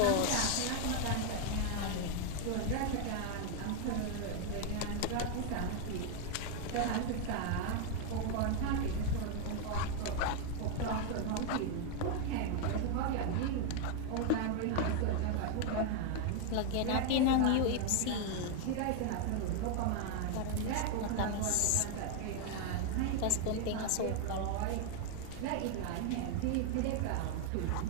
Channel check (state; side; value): different; both; correlation 0.00